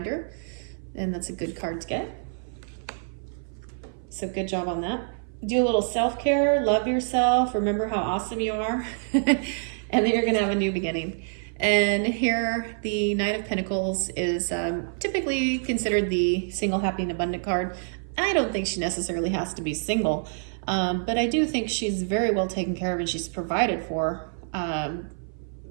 and that's a good card to get. So good job on that. Do a little self-care, love yourself, remember how awesome you are. And then you're going to have a new beginning. And here, the Knight of Pentacles is typically considered the single, happy, and abundant card. I don't think she necessarily has to be single, but I do think she's very well taken care of and she's provided for.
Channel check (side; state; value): left; silent; 57 dB below the other